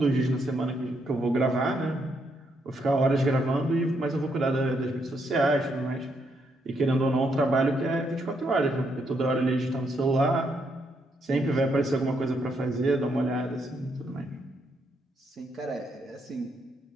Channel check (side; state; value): both; normal; correlation 0.77